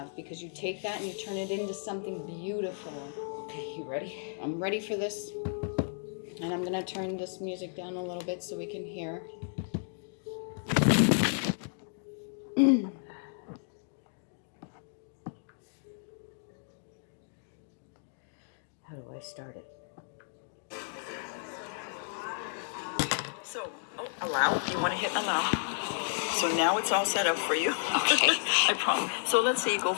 because you take that and you turn it into something beautiful. Okay, you ready? I'm ready for this. And I'm going to turn this music down a little bit so we can hear. How do I start it? So, allow. You want to hit allow. So now it's all set up for you. Okay. I promise. So let's say you go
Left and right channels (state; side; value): silent; right; digital silence